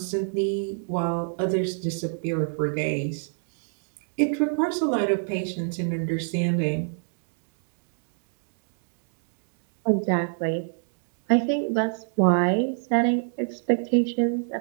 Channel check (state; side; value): silent; left; digital silence